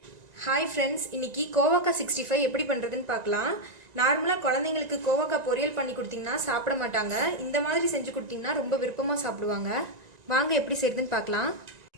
Hi friends, இன்னைக்கு கோவக்காய் 65 எப்படி பண்ணுறதுன்னு பார்க்கலாம். நார்மலாக குழந்தைங்களுக்கு கோவக்காய் பொரியல் பண்ணி கொடுத்தீங்கன்னா சாப்பிட மாட்டாங்க. இந்த மாதிரி செஞ்சு கொடுத்தீங்கன்னா ரொம்ப விருப்பமாக சாப்பிடுவாங்க. வாங்க எப்படி செய்யுதுன்னு பார்க்கலாம்.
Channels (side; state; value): left; late; 1.9 ms